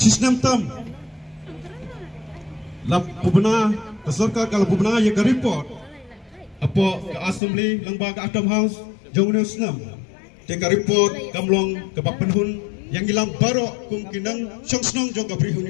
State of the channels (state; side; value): drops out; right; at 7.4 s